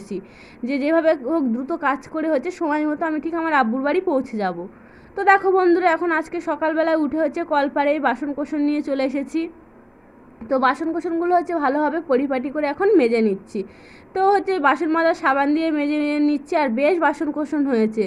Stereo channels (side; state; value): both; identical; correlation 1.00